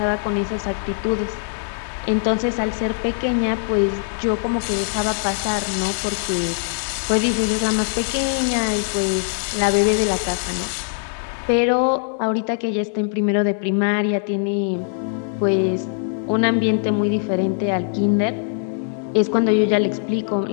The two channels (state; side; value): silent; right; digital silence